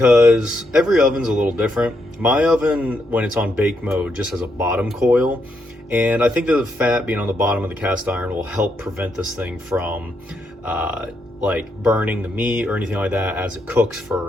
every oven's a little different. My oven, when it's on bake mode, just has a bottom coil. And I think that the fat being on the bottom of the cast iron will help prevent this thing from like burning the meat or anything like that as it cooks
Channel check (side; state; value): both; normal; correlation 0.79